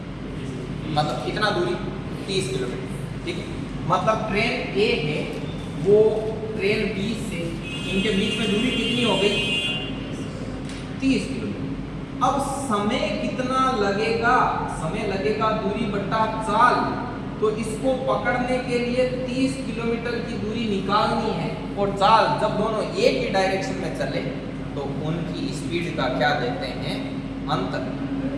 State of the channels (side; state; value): both; identical; correlation 1.00